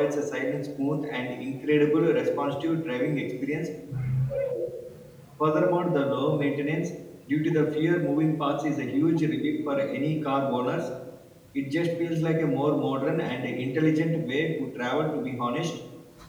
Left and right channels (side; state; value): both; identical; correlation 1.00